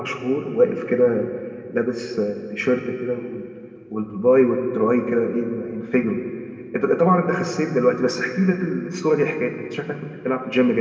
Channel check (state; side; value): identical; both; correlation 1.00